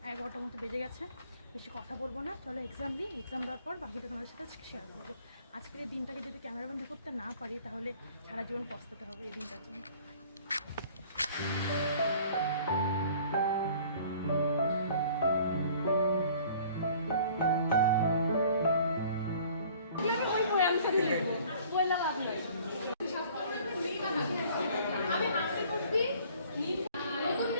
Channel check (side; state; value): both; inverted; correlation -0.52